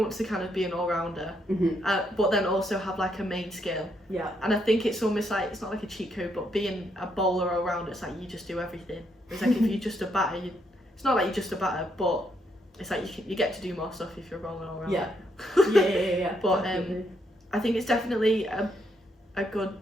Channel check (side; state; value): both; normal; correlation 0.76